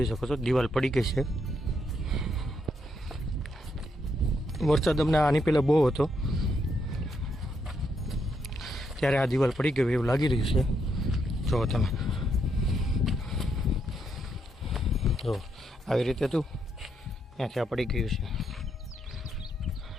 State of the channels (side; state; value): both; normal; correlation 0.78